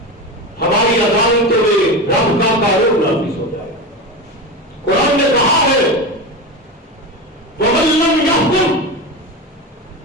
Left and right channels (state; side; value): normal; both; correlation 0.22